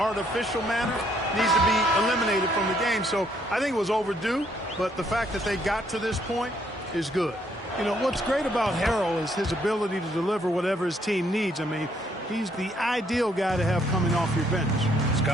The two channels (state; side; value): normal; both; correlation 0.69